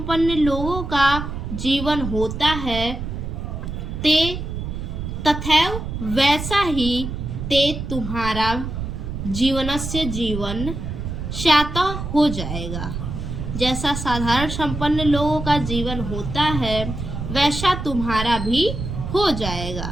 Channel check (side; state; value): right; noise; rumble, 6 dB below the sound